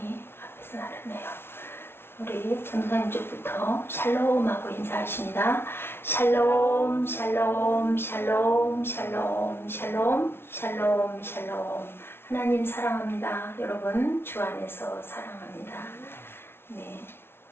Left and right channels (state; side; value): late; right; 0.12 ms